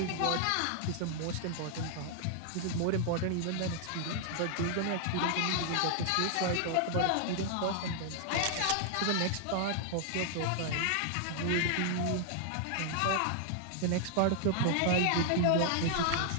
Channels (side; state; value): both; different; correlation 0.00